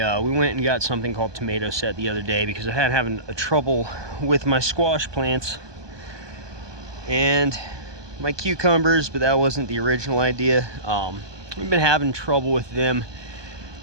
and got something called tomato set the other day because I had having a trouble with my squash plants and my cucumbers, but that wasn't the original idea. We've been having trouble with them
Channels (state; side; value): late; left; 1.2 ms